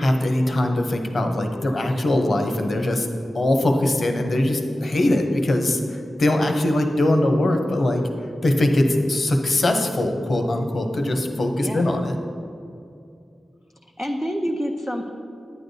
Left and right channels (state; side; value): normal; both; correlation 0.94